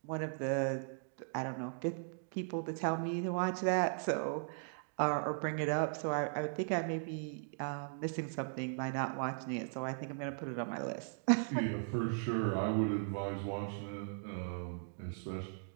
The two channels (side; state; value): left; silent; digital silence